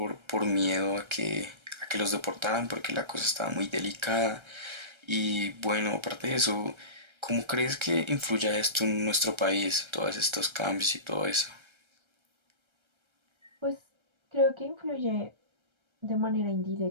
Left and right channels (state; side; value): late; left; 1.3 ms